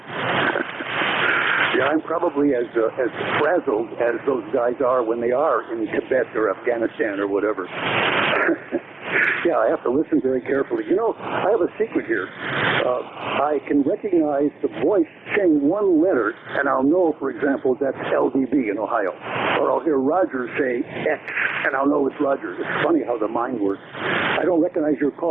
Yeah, I'm probably as frazzled as those guys are when they are in Tibet or Afghanistan or whatever. Yeah, I have to listen very carefully. You know, I have a secret here. I can recognize the voice saying one letter, and I'll know, for example, that's LDB in Ohio. Or I'll hear Roger say X, and I'll know it's Roger. It's funny how the mind works. I don't recognize your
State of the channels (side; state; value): left; quieter; 3.4 dB